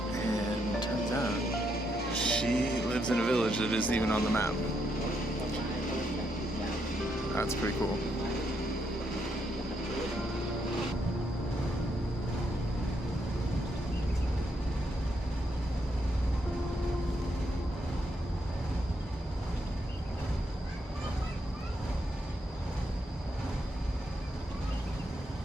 and turns out she lives in a village that isn't even on the map. That's pretty cool.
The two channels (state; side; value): normal; both; correlation 0.78